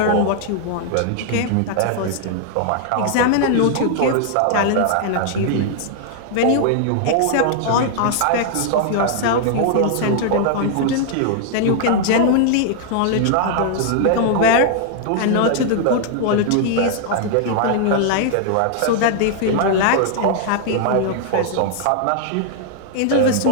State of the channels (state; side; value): different; both; correlation -0.01